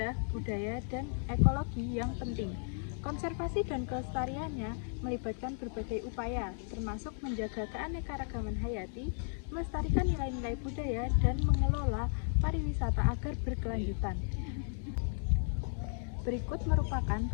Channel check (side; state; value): right; silent; 55 dB below the other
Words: budaya, dan ekologi yang penting. Konservasi dan kelestariannya melibatkan berbagai upaya, termasuk menjaga keanekaragaman hayati, melestarikan nilai-nilai budaya, dan mengelola pariwisata agar berkelanjutan. Berikut merupakan